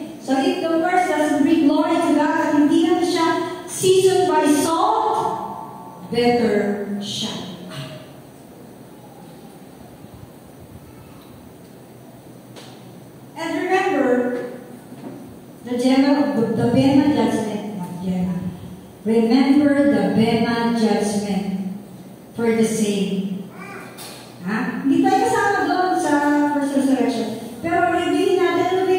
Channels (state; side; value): identical; both; correlation 1.00